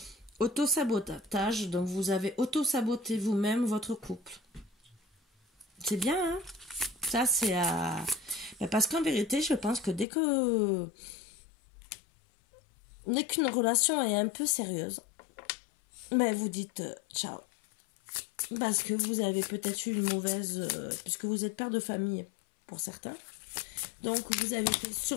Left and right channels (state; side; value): drops out; right; at 10.1 s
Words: Auto-sabotage, donc vous avez auto-saboté vous-même votre couple. C'est bien, hein? Ça, c'est à... Parce qu'en vérité, je pense que dès qu'une relation est un peu sérieuse, vous dites ciao. Parce que vous avez peut-être eu une mauvaise... puisque vous êtes père de famille, pour certains. Donc, vous avez fait